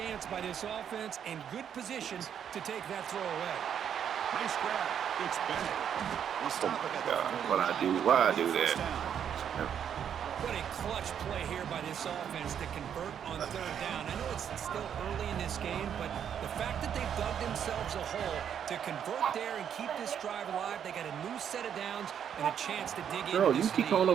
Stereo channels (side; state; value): left; quieter; 8.6 dB